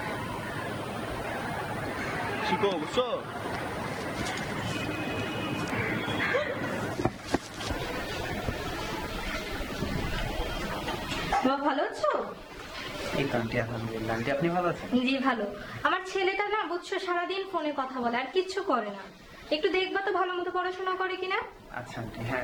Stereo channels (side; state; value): both; identical; correlation 1.00